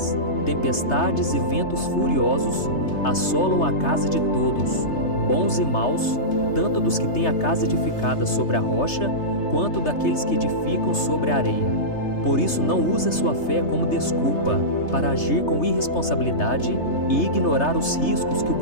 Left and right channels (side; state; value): right; late; 3.3 ms